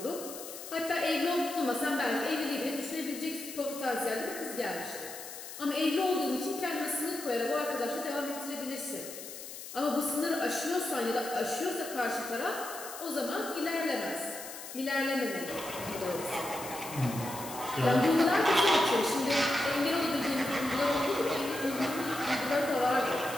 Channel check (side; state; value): left; noise; hiss, 11 dB below the sound